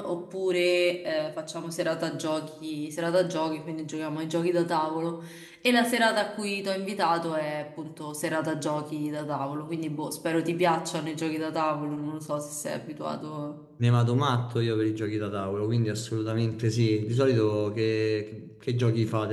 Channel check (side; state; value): both; identical; correlation 1.00